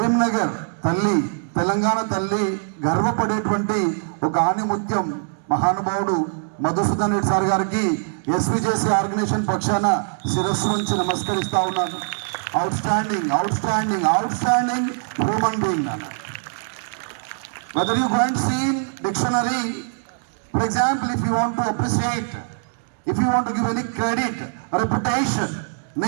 తల్లి, తెలంగాణ తల్లి గర్వపడేటువంటి ఒక ఆణిముత్యం మహానుభావుడు మధుసూదన్ రెడ్డి సార్ గారికి ఎస్విజేసి ఆర్గనైజేషన్ పక్షాన శిరస్సు నుంచి నమస్కరిస్తా ఉన్నాను. Out standing human being. Whether you go and see in dictionary, for example, if you want to appreciate, if you want to give any credit, reputation,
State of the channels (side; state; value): left; silent; digital silence